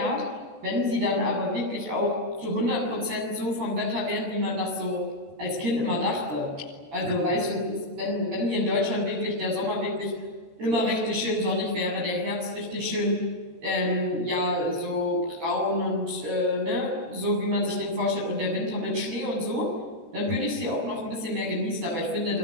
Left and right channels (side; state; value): left; late; 13 ms